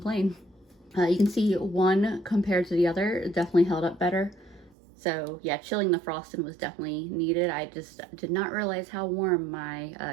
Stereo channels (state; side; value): drops out; left; at 4.7 s